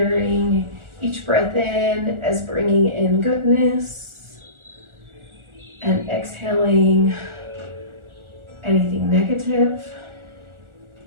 each breath in as bringing in goodness and exhaling anything negative.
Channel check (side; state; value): left; late; 1.4 ms